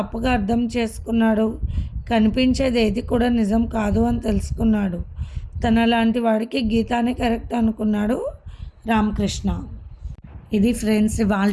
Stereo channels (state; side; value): identical; both; correlation 1.00